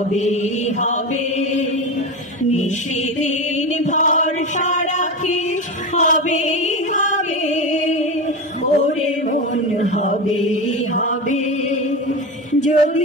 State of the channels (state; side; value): normal; both; correlation 0.22